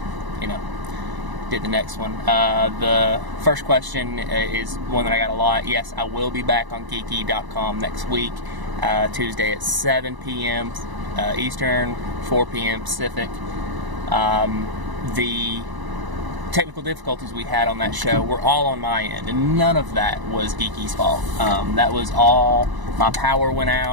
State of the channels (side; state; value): left; late; 1.0 ms